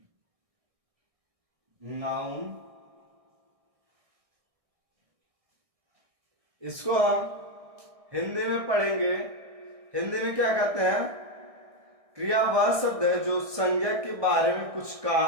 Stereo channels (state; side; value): late; left; 1.6 ms